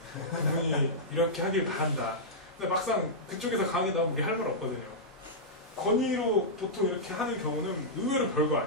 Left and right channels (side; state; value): both; normal; correlation -0.11